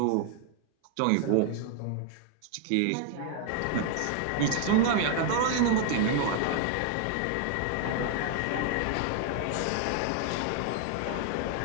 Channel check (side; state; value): both; different; correlation 0.00